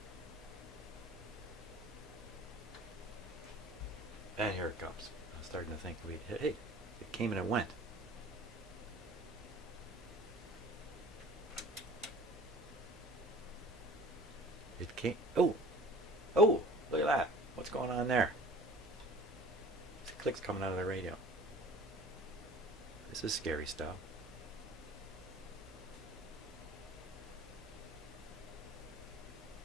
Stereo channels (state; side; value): normal; both; correlation 0.45